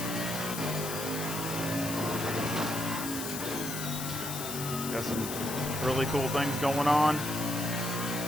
got some really cool things going on.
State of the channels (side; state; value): left; noise; hiss, 6 dB below the sound